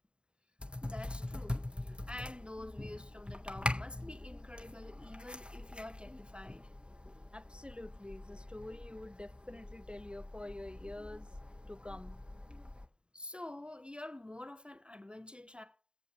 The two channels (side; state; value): left; late; 0.050 ms